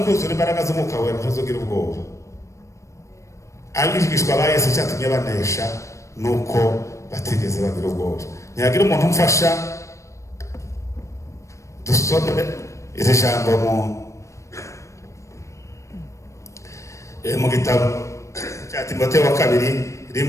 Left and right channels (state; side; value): late; right; 0.15 ms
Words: imbaraga z'umwuka wera ntuzogira ubwoba. Abigishwa ba Yesu cyatumye banesha nuko batigeze bagira ubwoba. Ntiyagira umuntu umfasha dusome iri jambo mu gitabo cya Timoteyo wa kabiri